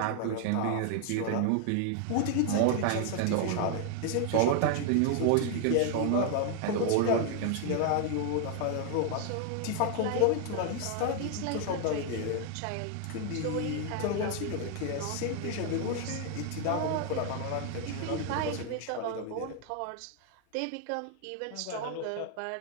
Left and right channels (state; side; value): different; both; correlation 0.00